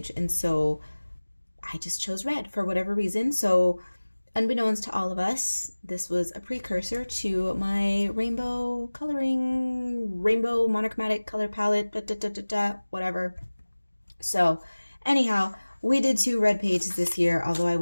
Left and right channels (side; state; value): both; inverted; correlation -1.00